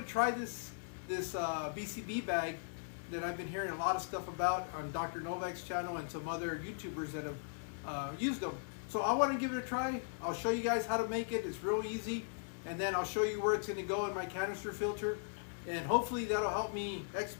to try this BCB bag that I've been hearing a lot of stuff about on Dr. Novak's channel and some other YouTubers that have used them. So I want to give it a try. I'll show you guys how to make it. It's real easy. And then I'll show you where it's going to go in my canister filter. And hopefully that'll help me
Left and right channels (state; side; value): silent; right; digital silence